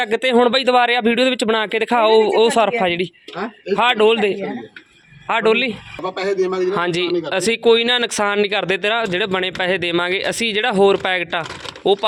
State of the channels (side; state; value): both; identical; correlation 1.00